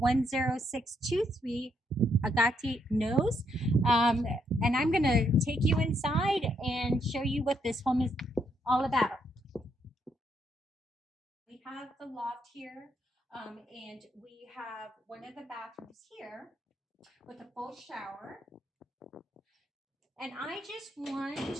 Agate Knoll. And I'm gonna take you inside and show you what this home is all about. We have the loft here, and we have one of the bathrooms here with a full shower. And I just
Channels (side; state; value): both; normal; correlation 0.75